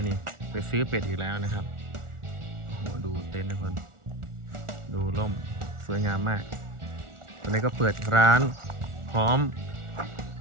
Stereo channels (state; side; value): late; left; 1.4 ms